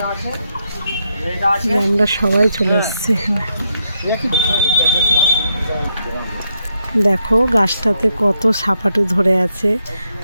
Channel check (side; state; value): both; inverted; correlation -0.80